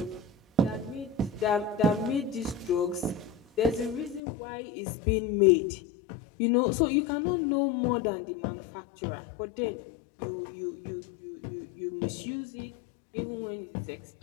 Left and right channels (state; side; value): drops out; right; at 4.2 s